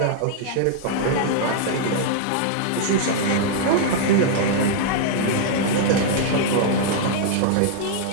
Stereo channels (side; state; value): both; different; correlation -0.01